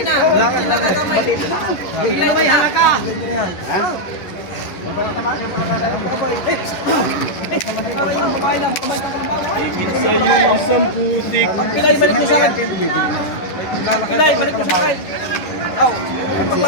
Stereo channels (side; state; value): right; late; 11 ms